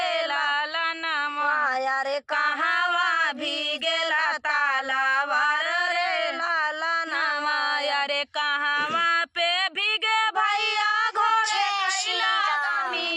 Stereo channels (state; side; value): identical; both; correlation 1.00